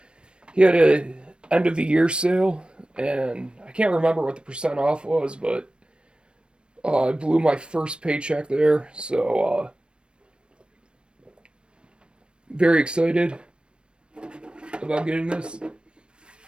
He had a end of the year sale, and I can't remember what the percent off was, but I blew my first paycheck there, so very excited about getting this.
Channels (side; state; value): left; late; 0.056 ms